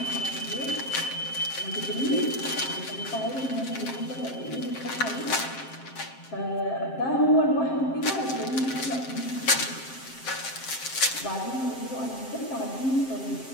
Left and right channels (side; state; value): right; late; 7.6 ms